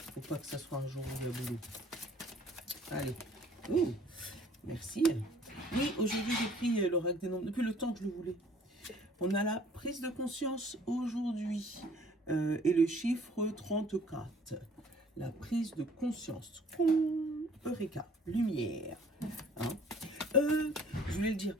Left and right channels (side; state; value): both; normal; correlation 0.55